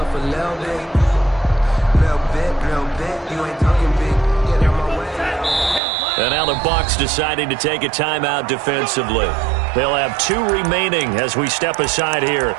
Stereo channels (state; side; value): drops out; left; at 5.8 s